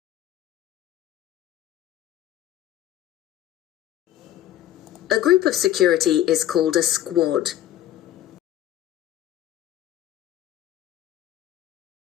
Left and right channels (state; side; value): quieter; right; 12.5 dB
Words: A group of security is called a squad.